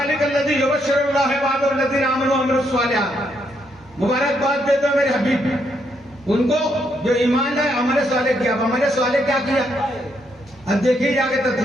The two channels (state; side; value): normal; both; correlation 0.76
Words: लज़ी युबश्शिरुल्लाहु इबादहुल्लज़ीना आमनू व अमिलुस्सालिहात। मुबारकबाद दे दो मेरे हबीब उनको जो ईमान लाए, अमल सालेह किया। अमल सालेह क्या किया? अब देखिए जाके